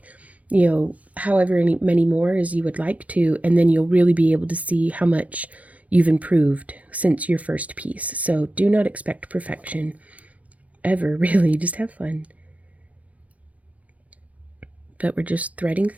you know, however many more as you would like to, and then you'll really be able to see how much you've improved since your first piece. So do not expect perfection ever, really. Just have fun. But we're just threading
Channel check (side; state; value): left; late; 0.067 ms